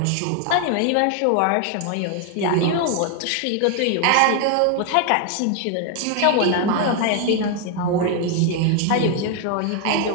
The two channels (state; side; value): different; both; correlation 0.01